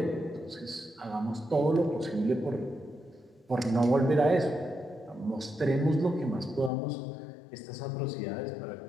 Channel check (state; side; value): drops out; right; at 6.7 s